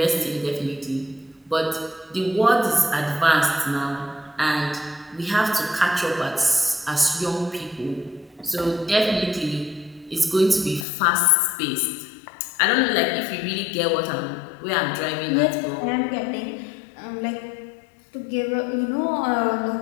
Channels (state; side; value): drops out; right; at 10.9 s